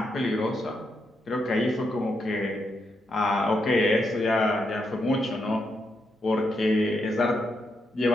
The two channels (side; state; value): both; normal; correlation 0.81